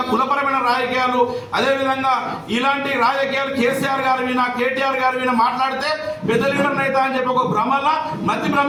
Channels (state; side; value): identical; both; correlation 1.00